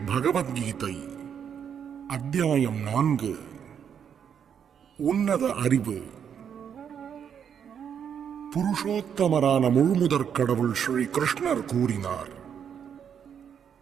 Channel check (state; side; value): quieter; left; 8.0 dB